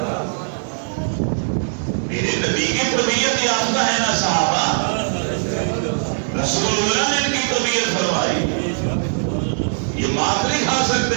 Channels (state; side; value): silent; left; digital silence